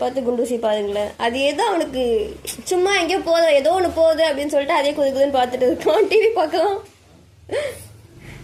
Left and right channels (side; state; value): both; identical; correlation 1.00